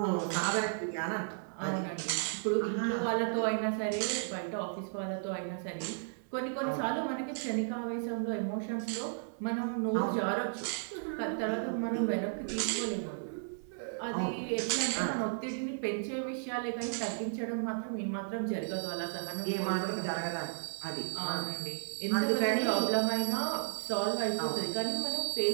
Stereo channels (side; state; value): left; silent; 55 dB below the other